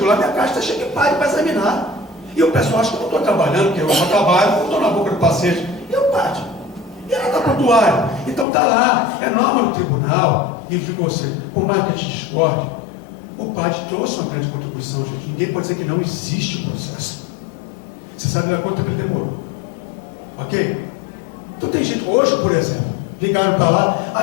lá, minha caixa está cheia de padre para examinar. E o pessoal acha que eu não estou trabalhando, porque eu não trabalho, eu estou na boca do paciente. E o padre? E ela está prontuário. Então está lá, é norma do tribunal. E digo você, por mais que a gente discorde, o padre trouxe uma grande contribuição, gente. Ninguém pode dizer que não existe o processo. Você sabe lá quanto tempo ele demorou. Ok? Então tem gente, hoje, por exemplo, ligaram para lá,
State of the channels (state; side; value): drops out; right; at 8.5 s